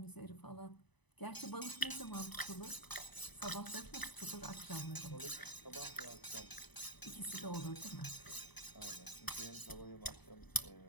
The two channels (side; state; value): right; late; 1.0 ms